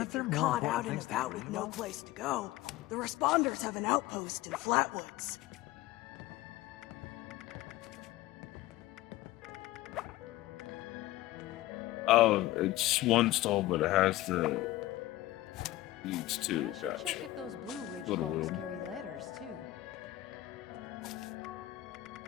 If there you're more caught important out and things to about worry with no about? place to go, the responders have an outpost in Flatwoods. Oh, it's one stall, but it has the leads to. I should check if those Blue Ridge Little folks weird. carry letters, too.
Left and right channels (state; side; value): quieter; right; 16.6 dB